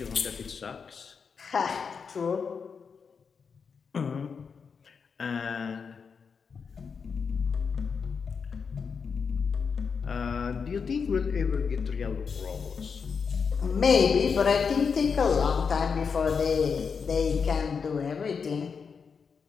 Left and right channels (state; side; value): quieter; right; 5.8 dB